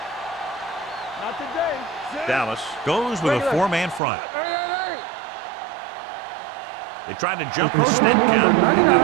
Not today. Dallas goes with a four-man front. Hey. They tried to jump the snap count, and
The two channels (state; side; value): drops out; left; at 4.0 s